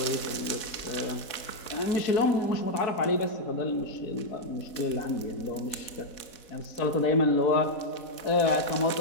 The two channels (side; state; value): right; late; 4.1 ms